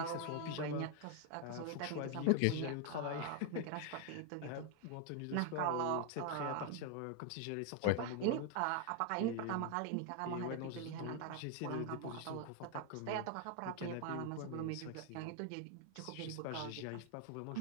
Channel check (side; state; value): both; different; correlation 0.00